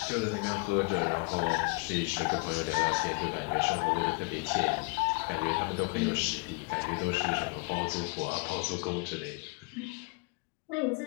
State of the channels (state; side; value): quieter; right; 29.2 dB